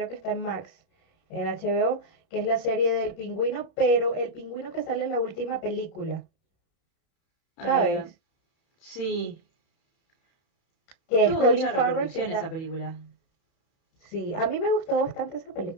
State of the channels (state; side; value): late; right; 31 ms